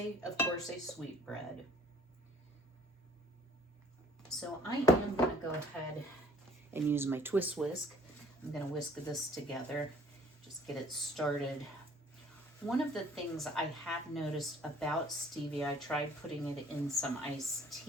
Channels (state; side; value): normal; both; correlation 0.56